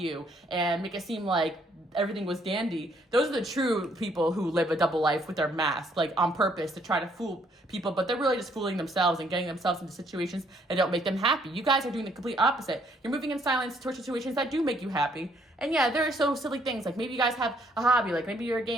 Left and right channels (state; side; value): normal; both; correlation 0.67